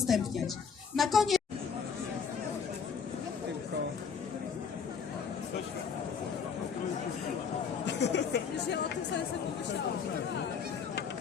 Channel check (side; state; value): right; quieter; 6.4 dB